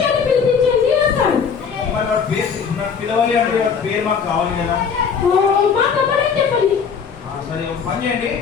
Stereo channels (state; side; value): quieter; right; 6.4 dB